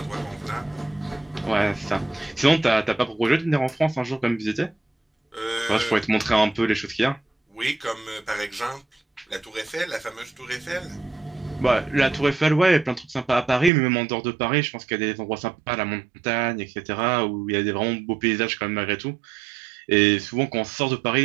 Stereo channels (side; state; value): left; drops out; at 13.7 s